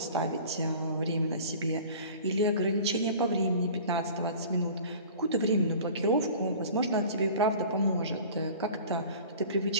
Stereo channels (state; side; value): inverted; both; correlation -0.42